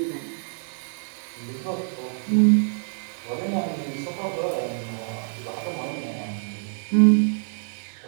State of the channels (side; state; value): left; silent; digital silence